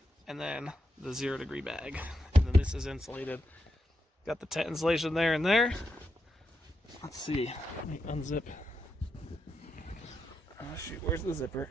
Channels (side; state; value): both; normal; correlation 0.84